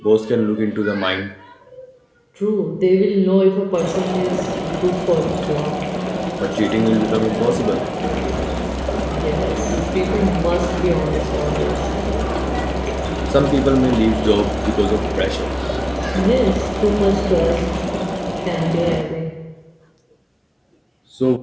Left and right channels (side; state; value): both; identical; correlation 1.00